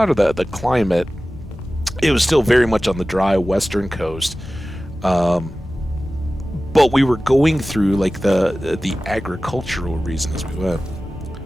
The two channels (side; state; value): both; normal; correlation 0.96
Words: or the climate, it was still very much on the dry western coast, but we were going through the agricultural reason as we went.